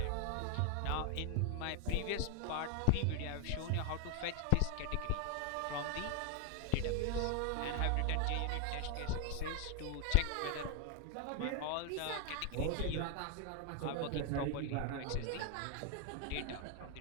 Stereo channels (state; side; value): different; both; correlation 0.01